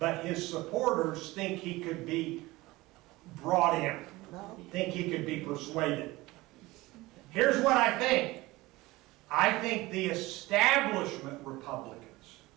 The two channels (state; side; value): quieter; left; 20.1 dB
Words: his supporters think he could be brought in, think he could be persuaded. Here's what I think. I think the establishment Republicans